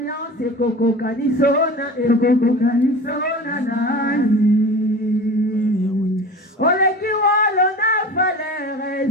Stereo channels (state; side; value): normal; both; correlation 0.35